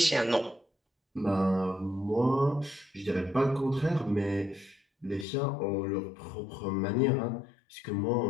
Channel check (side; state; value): right; drops out; at 5.2 s